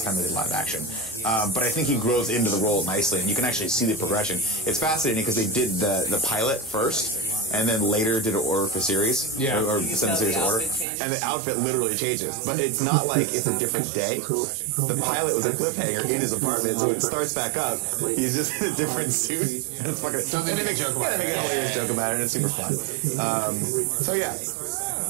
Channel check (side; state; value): left; drops out; at 10.9 s